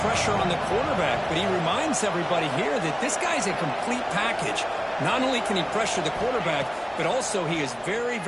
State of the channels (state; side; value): identical; both; correlation 1.00